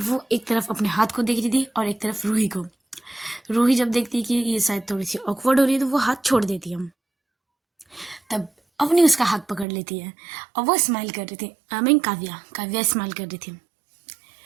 एक तरफ अपने हाथ को देख रही थी और एक तरफ रूही को। रूही जब देखती कि ये शायद थोड़ी सी ऑकवर्ड हो रही है तो वो हाथ छोड़ देती है। तब अवनी उसका हाथ पकड़ लेती है और वो स्माइल कर रही थी, आई मीन काव्या स्माइल कर रही थी।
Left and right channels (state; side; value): drops out; left; at 9.7 s